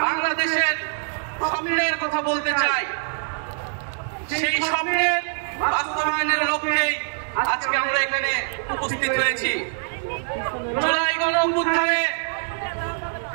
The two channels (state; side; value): silent; left; digital silence